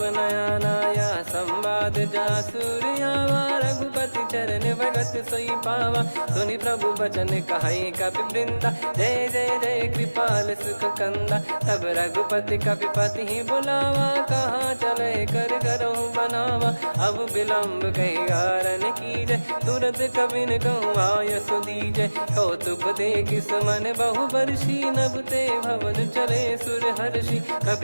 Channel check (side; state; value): both; inverted; correlation -1.00